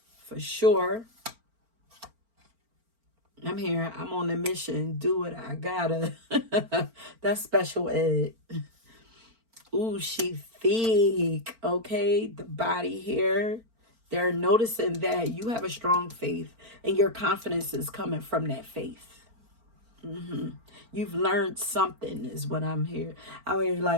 for sure. I'm here. I'm on a mission. Do what I gotta. That's special ed. Ooh, she thick. Okay, the body here. They're noticing that you have a strong faith and your confidence is coming from that faith. You've learned something is what I'm here. I mean,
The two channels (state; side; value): late; left; 4.4 ms